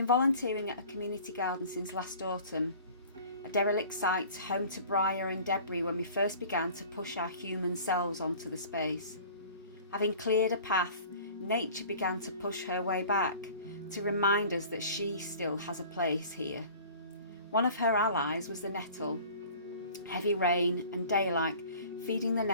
volunteering at a community garden since last autumn, a derelict site home to briar and debris when we first began to push our human selves onto the space. Having cleared a path, nature began to push her way back to remind us that she still has a place here. One of her allies was the nettle. Heavy rain and daylight feeding the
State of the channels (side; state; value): both; inverted; correlation -0.45